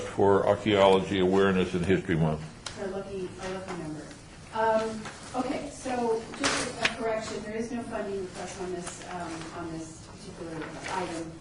for Archaeology Awareness and History Month. Our lucky number. Okay, so just a correction, there is no funding request on this particular item,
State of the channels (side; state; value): both; identical; correlation 1.00